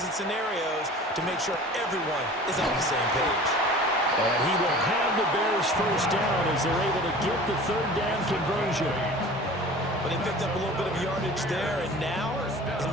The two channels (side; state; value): both; normal; correlation 0.41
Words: and scenarios to make sure everyone is on the same page. And he will have the Bears first down as they're able to get the third down conversion. But they picked up a little bit of yardage there, and now,